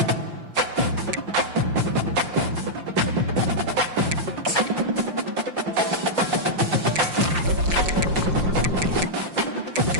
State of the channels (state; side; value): late; left; 5.7 ms